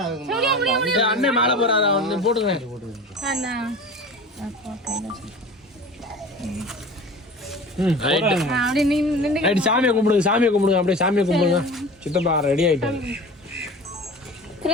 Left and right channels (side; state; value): both; normal; correlation 0.37